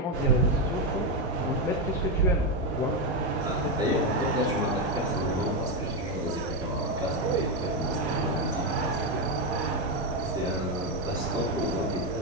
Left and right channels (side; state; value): both; normal; correlation 0.07